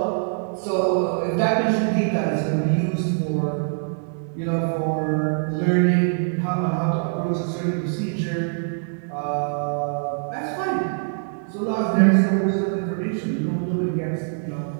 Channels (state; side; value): silent; left; digital silence